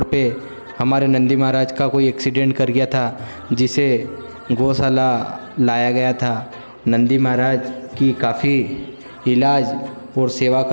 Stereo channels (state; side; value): inverted; both; correlation -1.00